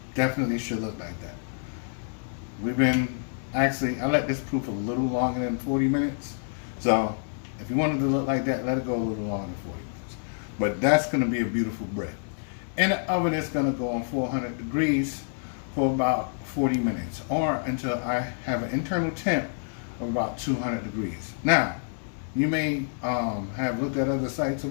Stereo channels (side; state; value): right; silent; 60 dB below the other